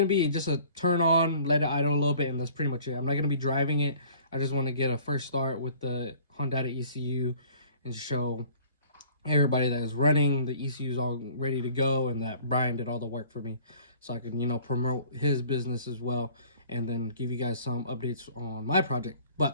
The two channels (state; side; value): inverted; both; correlation -0.51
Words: be just a turn on, let it idle a little bit, and that's pretty much it. I'm not gonna be driving it. I just want to get a first start with the Honda ECU and show everybody that is running the ECU is all ready to go, and that Brian did all the work for me, so I can promote his business as well, and then give you guys some updates on my project.